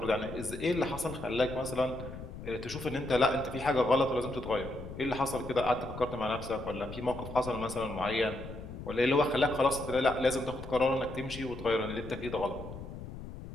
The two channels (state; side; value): noise; left; rumble, 11 dB below the sound